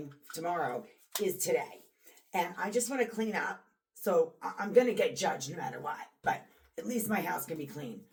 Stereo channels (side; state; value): both; identical; correlation 1.00